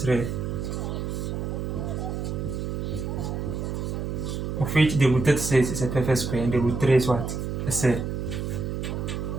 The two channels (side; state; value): right; noise; hum, 3 dB below the sound